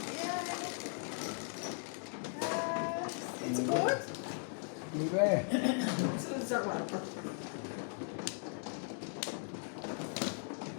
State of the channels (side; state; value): right; silent; 53 dB below the other